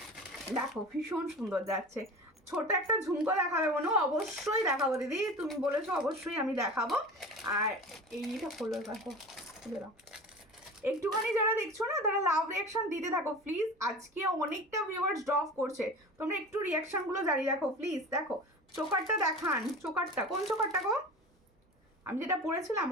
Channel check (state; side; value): normal; both; correlation 0.35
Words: দেখো ভীষণ সুন্দর যাচ্ছে। ছোট একটা ঝুমকো দেখাবে মনে, অবশ্যই দেখাবো দিদি, তুমি বলেছো অবশ্যই আমি দেখাবো। আর এইটা হলো, দেখো খুলে দাও। একটুখানি যারা দেখছো না তারা লাভ রিয়াকশন দিতে থাকো প্লিজ, আজকে অনেকটা ভিউয়ার্স ড্রপ করছে, তোমরা একটু রিয়াকশনগুলো জারি রাখো প্লিজ। দেখো চোকারটা দেখান, চোকারটা কোন চোকারটা গো? আমি যেটা পরেছিলাম